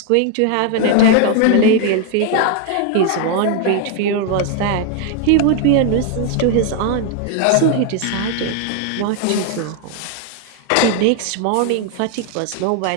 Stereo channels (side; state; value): both; different; correlation 0.01